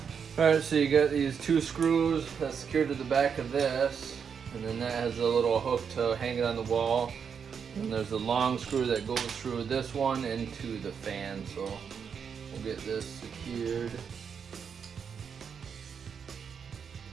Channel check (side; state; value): left; quieter; 6.8 dB